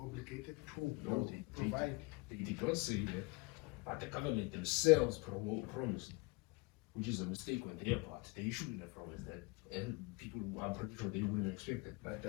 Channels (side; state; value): right; quieter; 26.4 dB